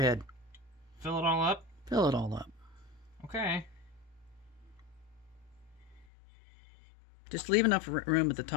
Fill it all up? Fill it all up. Okay. Just leave enough room at the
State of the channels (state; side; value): drops out; right; at 6.1 s